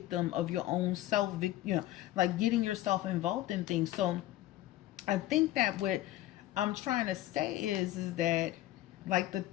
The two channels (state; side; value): quieter; right; 15.0 dB